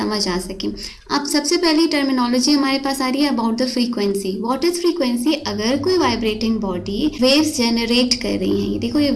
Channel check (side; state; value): both; identical; correlation 1.00